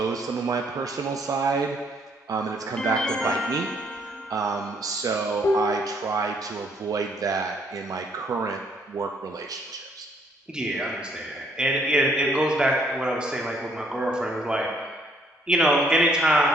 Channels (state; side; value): normal; both; correlation 0.67